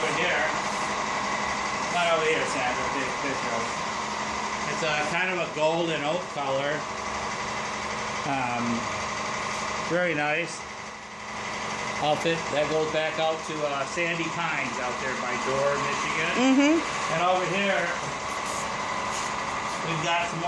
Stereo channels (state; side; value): identical; both; correlation 1.00